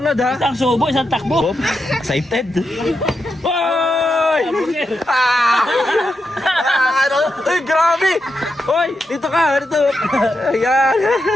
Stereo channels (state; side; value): normal; both; correlation 0.86